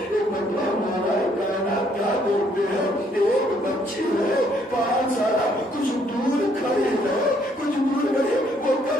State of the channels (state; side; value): normal; both; correlation 0.67